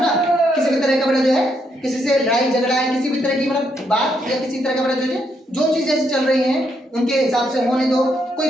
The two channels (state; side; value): normal; both; correlation 0.76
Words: किसी भी तरह का बड़ा जो है किसी से लड़ाई झगड़ा है, किसी भी तरह की मतलब बात या किसी तरह का मतलब जो चीज जैसे चल रही है उनके हिसाब से होने दो।